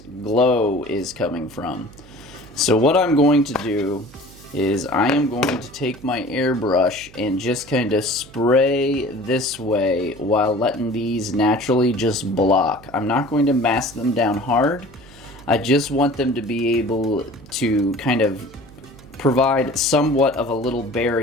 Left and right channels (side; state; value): right; noise; hum, 22 dB below the sound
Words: glow is coming from. So what I'm going to do is I am going to take my airbrush and just kind of spray this way while letting these naturally just block. I'm not going to mask them down hard. I just want them to be able to kind of provide somewhat of a little